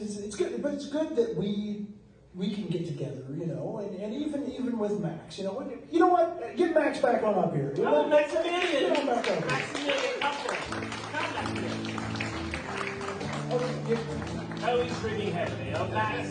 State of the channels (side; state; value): both; identical; correlation 1.00